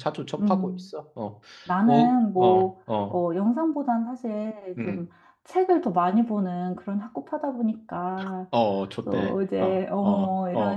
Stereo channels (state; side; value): identical; both; correlation 1.00